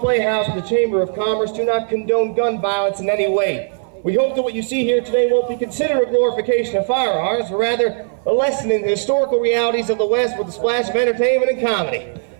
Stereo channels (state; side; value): silent; left; 58 dB below the other